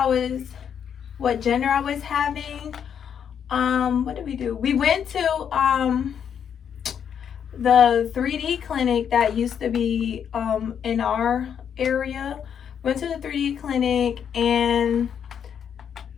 what gender I was having, what did we do? We went to the 3D clinic that used to be in our area. Went to the 3D clinic, and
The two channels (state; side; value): quieter; right; 8.1 dB